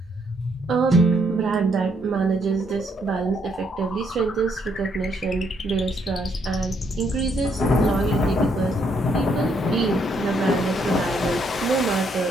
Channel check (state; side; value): normal; both; correlation 0.72